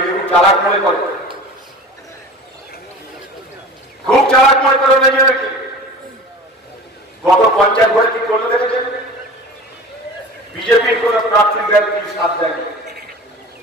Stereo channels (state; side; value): normal; both; correlation 0.38